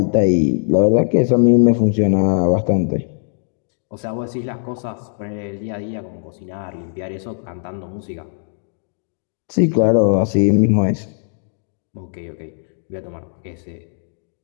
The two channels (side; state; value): right; silent; digital silence